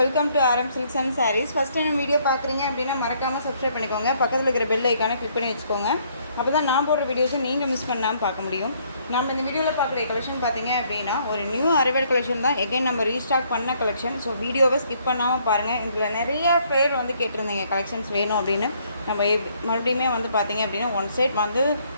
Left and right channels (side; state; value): both; inverted; correlation -0.67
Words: welcome to Aaram silks and sarees. First time video பார்க்குறீங்க அப்படின்னா மறக்காமல் சப்ஸ்கிரைப் பண்ணிக்கோங்க. பக்கத்தில் இருக்கிற பெல் ஐக்கானை கிளிக் பண்ணி வச்சுக்கோங்க. அப்போ தான் நான் போடுற வீடியோஸை நீங்கள் மிஸ் பண்ணாமல் பார்க்க முடியும். நம்ம இந்த வீடியோவில் பார்க்குற கலெக்ஷன் பார்த்தீங்க அப்படின்னா ஒரு நியூ அரைவல் கலெக்ஷன் தான். எகைன் நம்ம ரீஸ்டாக் பண்ண கலெக்ஷன். ஸோ வீடியோவை ஸ்கிப் பண்ணாமல் பாருங்கள். இதில் நிறைய பேர் வந்து கேட்டிருந்தீங்க கலெக்ஷன்ஸ் வேணும் அப்படின்னு. நம்ம மறுபடியுமே வந்து பார்த்தீங்க அப்படின்னா ஒன் சைட் வந்து